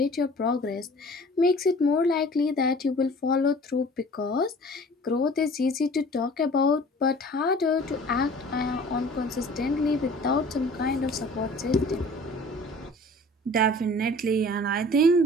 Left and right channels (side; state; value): both; normal; correlation 0.47